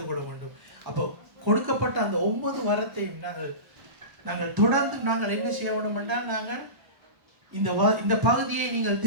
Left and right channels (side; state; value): left; late; 1.3 ms